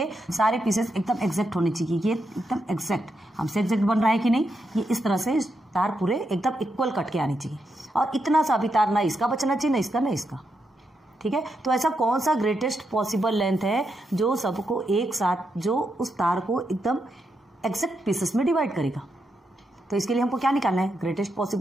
सारे पीसेस एकदम एग्जैक्ट होने चाहिए। ये एकदम एग्जैक्ट, हमसे एग्जैक्ट बन रहा है कि नहीं, ये इस तरह से तार पूरे एकदम इक्वल कट के आनी चाहिए। और इतना सा भी तार ना इसका बचना चाहिए, ना इसका ना इसका। ठीक है, तो ऐसा कौन सा ग्रेटेस्ट पॉसिबल लेंथ है जो सबको एक साथ, जो उस तार को एकदम एग्जैक्ट पीसेस में डिवाइड करेगा? तो इसके लिए हमको क्या निकालना है? ग्रेटेस्ट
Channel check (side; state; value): both; normal; correlation 0.83